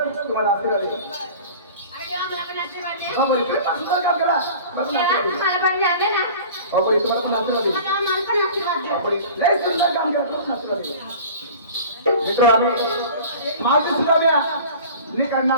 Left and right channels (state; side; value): inverted; both; correlation -0.41